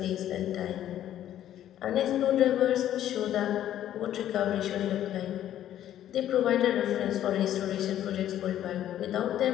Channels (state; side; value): quieter; right; 11.7 dB